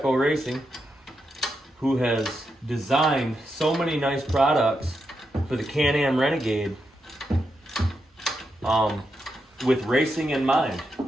Racing, who has designed so many nice products for the Canam Renegade with racing in mind.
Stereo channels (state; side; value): normal; both; correlation 0.85